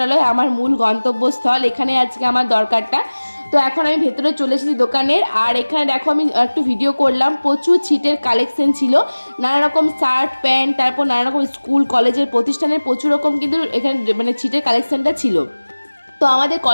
আমার মূল গন্তব্যস্থল। এখানে আজকে আমার দরকারটা। তো এখন আমি ভেতরে চলে এসেছি দোকানের। আর এখানে দেখো আমি একটু ভিডিও করলাম, প্রচুর ছিটের কালেকশন ছিল, নানা রকম শার্ট প্যান্ট, তারপর নানা রকম স্কুল কলেজের প্রতিষ্ঠানের প্রচুর রকম কিন্তু এখানে মানে ছিটের কালেকশনটা ছিল। তো আমাদের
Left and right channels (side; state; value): both; inverted; correlation -1.00